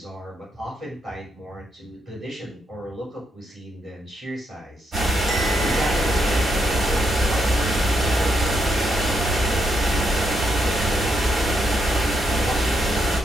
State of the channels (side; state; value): both; normal; correlation 0.79